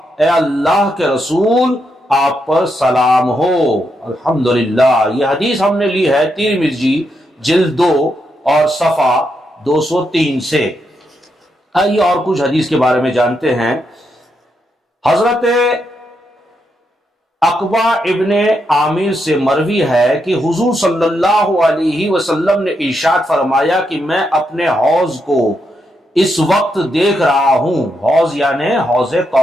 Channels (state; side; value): normal; both; correlation 0.81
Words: اے اللہ کے رسول آپ پر سلام ہو۔ الحمدللہ۔ یہ حدیث ہم نے لی ہے ترمذی جلد 2 اور صفحہ 203 سے۔ آئیے اور کچھ حدیث کے بارے میں جانتے ہیں۔ حضرت عقبہ ابن عامر سے مروی ہے کہ حضور صلی اللہ علیہ وسلم نے ارشاد فرمایا کہ میں اپنے حوض کو اس وقت دیکھ رہا ہوں، حوض یعنی حوض